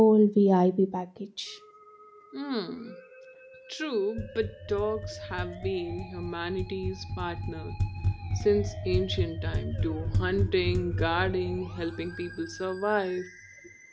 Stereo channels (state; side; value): identical; both; correlation 1.00